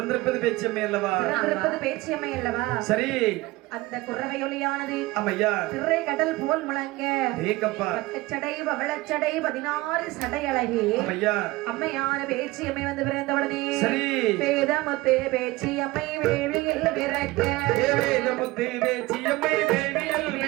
பேச்சம்மே அல்லவா பிறந்திருப்பது பேச்சியம்மை அல்லவா சரி அந்த குறவையொலியானது அம்மையா திரை கடல் போல் முழங்க ஏங்கப்பா பக்கச்சடை பவளச்சடை 16 சடை அழகி அம்மையா அம்மையான பேச்சியம்மை வந்து பிறந்தவுடனே சரி வேதமுத்து பேச்சியம்மை வேள்வியில் பிறக்க வேதமுத்து பேச்சியம்மை வேள்வியில்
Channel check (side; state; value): left; quieter; 20.0 dB